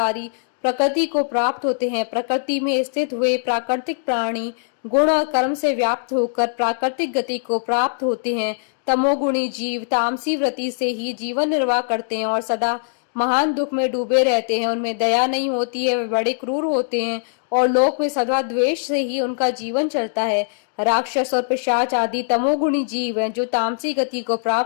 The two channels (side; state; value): right; silent; digital silence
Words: ही प्रकृति को प्राप्त होते हैं। प्रकृति में स्थित हुए प्राकृतिक प्राणी गुण और कर्म से व्याप्त होकर प्राकृतिक गति को प्राप्त होते हैं। तमोगुणी जीव तामसी वृत्ति से ही जीवन निर्वाह करते हैं और सदा महान दुख में डूबे रहते हैं, उनमें दया नहीं होती है, वे बड़े क्रूर होते हैं और लोक में सदा द्वेष से ही उनका जीवन चलता है। राक्षस और पिशाच आदि तमोगुणी जीव हैं जो तामसी गति को